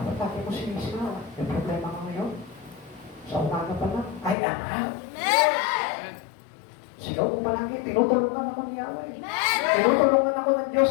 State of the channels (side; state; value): right; drops out; at 4.4 s